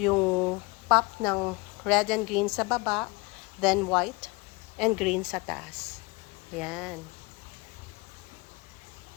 pop ng red and green sa baba, then white and green sa taas. Ayan.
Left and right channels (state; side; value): quieter; right; 26.4 dB